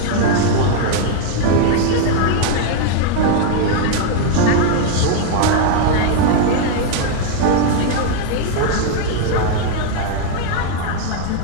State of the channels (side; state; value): both; different; correlation 0.00